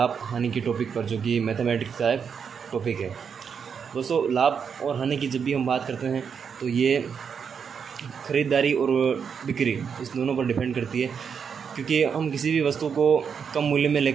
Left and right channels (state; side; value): quieter; left; 6.7 dB